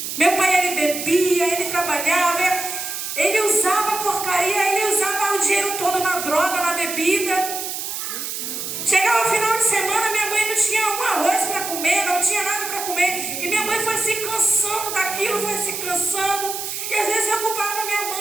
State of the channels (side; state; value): right; noise; hiss, 5 dB below the sound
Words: Meu pai, ele bebia, ele trabalhava, ele usava porcaria, ele usava o dinheiro todo na droga, na bebida. Chegava o final de semana, minha mãe não tinha um arroz para comer, não tinha nada para comer. E minha mãe foi se cansando daquilo, foi se cansando. E às vezes eu culpava minha